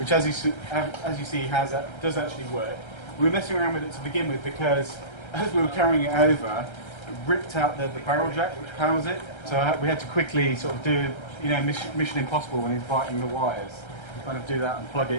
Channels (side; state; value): right; late; 1.3 ms